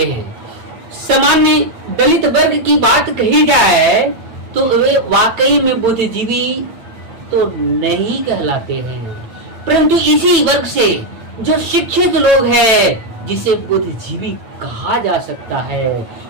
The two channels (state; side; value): late; left; 8.9 ms